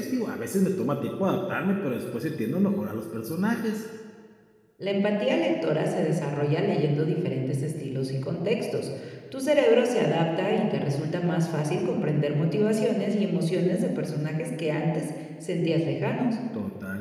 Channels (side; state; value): both; identical; correlation 1.00